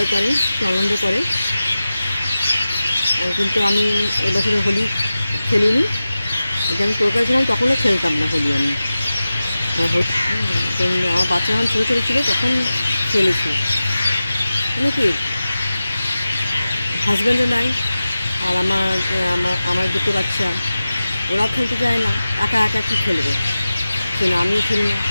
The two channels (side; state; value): both; inverted; correlation -0.95